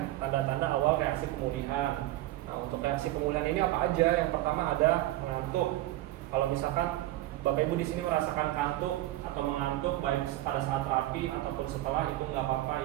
tanda-tanda awal reaksi pemulihan. Nah, untuk reaksi pemulihan ini apa aja? Yang pertama ada mengantuk. Kalau misalkan Bapak Ibu di sini merasakan kantuk atau mengantuk baik pada saat terapi ataupun setelah, itu nggak apa-apa,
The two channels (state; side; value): quieter; left; 16.1 dB